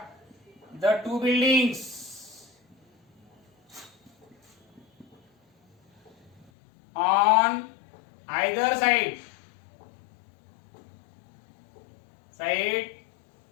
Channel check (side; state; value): right; drops out; at 6.5 s